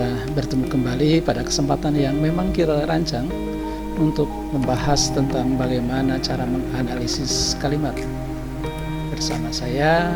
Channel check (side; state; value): both; identical; correlation 1.00